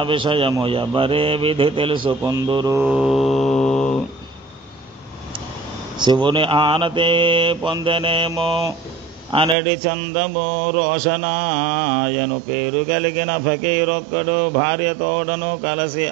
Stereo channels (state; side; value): drops out; left; at 9.6 s